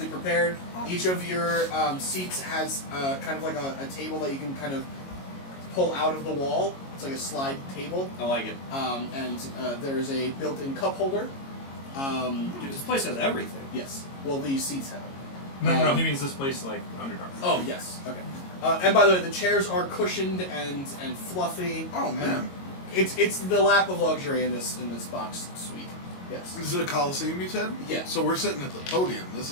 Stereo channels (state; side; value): late; right; 22 ms